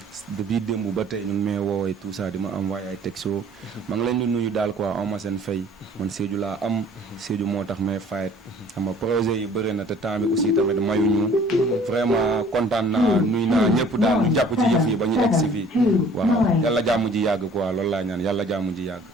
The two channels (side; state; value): both; normal; correlation 0.53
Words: depuis démb ba tey ñu ngi may woowee tout ça di ma envoyé ay texto maa ngi leen di nuyu daal quoi am ma seen fay man Sédhiou laa am Sédhiou moo tax may fayet xam nga projet yi bëri na te temps bi aussi tamit mayuñu vraiment kontaan naa nuyu naa ñëpp daal ñu jàpp ci yëf yi ba ñu egg si fii waaw yàlla jàmm ji yàgg quoi loolu laa ñaan yàlla jàmm ji yàgg